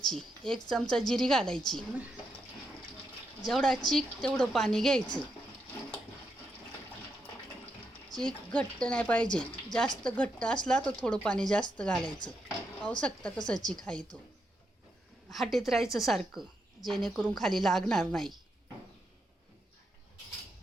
1 चमचा जिरी घालायची. जेवढा चीक तेवढं पाणी घ्यायचं. चीक घट्ट नाही पाहिजे. जास्त घट्ट असला तर थोडं पाणी जास्त घालायचं. पाहू शकता कसं चीक आहे तो. हाटीत राहायचं सारखं, जेणेकरून खाली लागणार नाही.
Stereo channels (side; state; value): both; normal; correlation 0.82